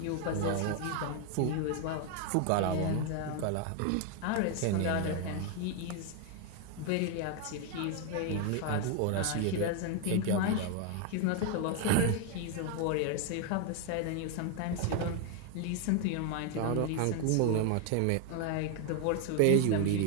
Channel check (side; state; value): both; different; correlation 0.01